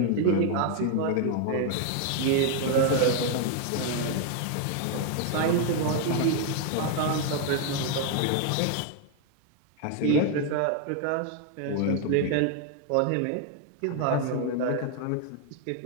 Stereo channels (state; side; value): different; both; correlation 0.00